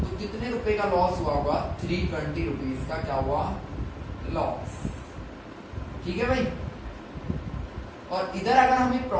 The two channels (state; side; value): identical; both; correlation 1.00